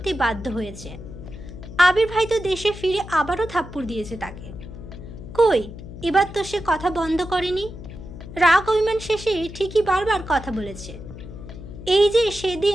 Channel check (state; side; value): noise; left; hum, 13 dB below the sound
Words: বাধ্য হয়েছে। আবির ভাই তো দেশে ফিরে আবারও থাপ্পড় দিয়েছে তাকে। কই, এবার তো সে কথা বন্ধ করেনি। রাগ অভিমান শেষে ঠিকই বারবার কথা বলেছে। এই যে